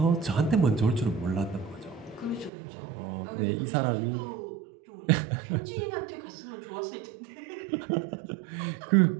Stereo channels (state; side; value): drops out; left; at 2.5 s